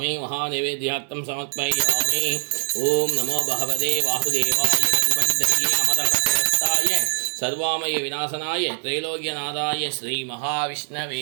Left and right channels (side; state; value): left; silent; digital silence